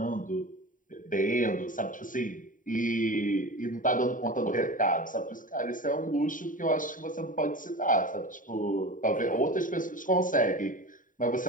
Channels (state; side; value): late; right; 0.38 ms